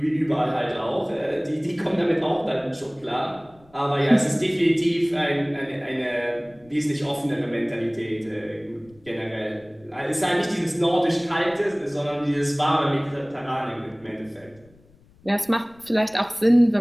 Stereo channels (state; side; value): noise; left; rumble, 29 dB below the sound